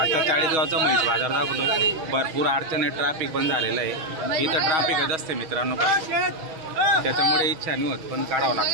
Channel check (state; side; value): late; left; 6.3 ms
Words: आता चाळीसगावचा म्हैस बाजार दाखवतोय. भरपूर अडचण आहे, ट्रॅफिक बंद झालेलं आहे. इथं ट्रॅफिकच असते मित्रांनो, त्याच्यामुळे इच्छा नाही होत पण काढावा